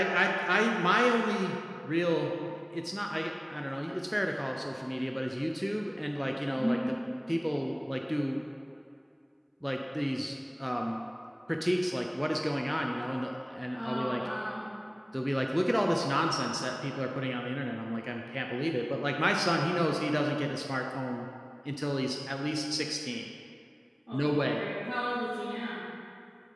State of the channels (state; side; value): identical; both; correlation 1.00